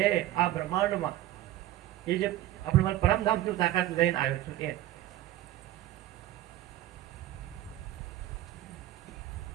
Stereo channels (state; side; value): quieter; left; 14.1 dB